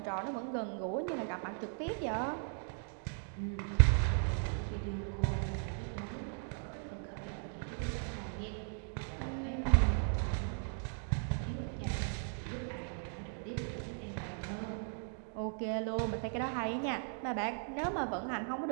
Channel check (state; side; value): silent; left; 53 dB below the other